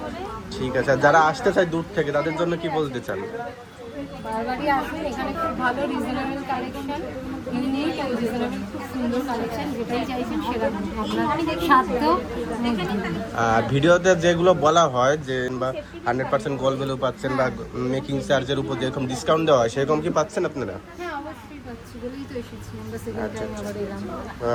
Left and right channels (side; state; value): both; identical; correlation 1.00